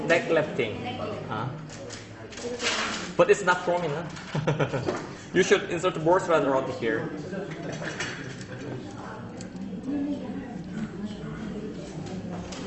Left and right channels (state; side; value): identical; both; correlation 1.00